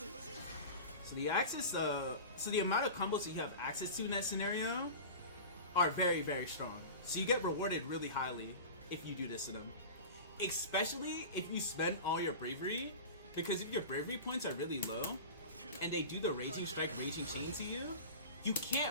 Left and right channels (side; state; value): both; inverted; correlation -0.31